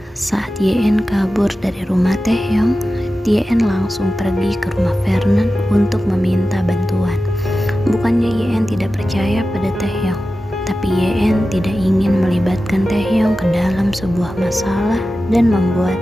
Saat YN kabur dari rumah Taehyung, YN langsung pergi ke rumah Vernon untuk meminta bantuan. Bukannya YN tidak percaya pada Taehyung, tapi YN tidak ingin melibatkan Taehyung ke dalam sebuah masalah dan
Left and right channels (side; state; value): both; normal; correlation 0.94